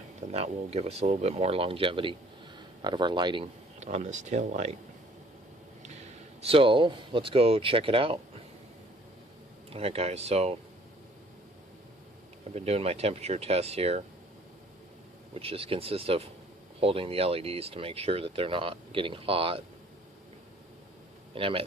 then that will give us a little bit more longevity out of our lighting on this tail light. So let's go check it out. Alright guys, so I've been doing my temperature test here, which just consists of holding the LEDs to make sure that they're not getting hot. And I'm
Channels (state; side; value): normal; both; correlation 0.56